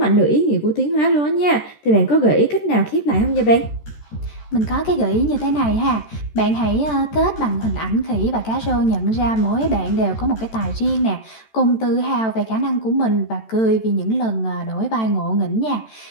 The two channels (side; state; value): right; late; 13 ms